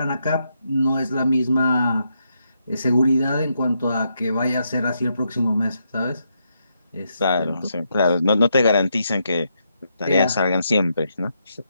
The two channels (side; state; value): both; inverted; correlation -0.80